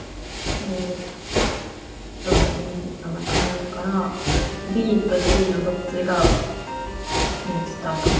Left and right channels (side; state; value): both; identical; correlation 1.00